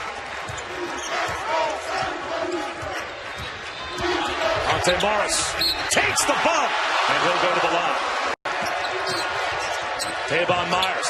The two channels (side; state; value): both; identical; correlation 1.00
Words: Monte Morris takes the bump, and he'll go to the line. Tavon